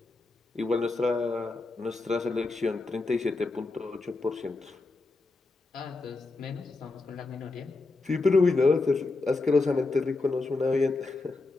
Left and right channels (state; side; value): quieter; right; 3.5 dB